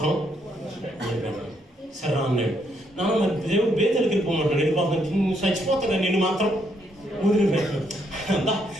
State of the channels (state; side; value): normal; both; correlation 0.74